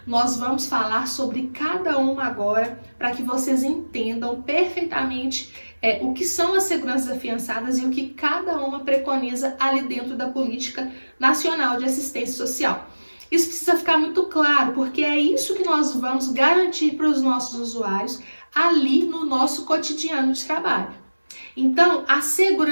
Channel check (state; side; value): inverted; both; correlation -1.00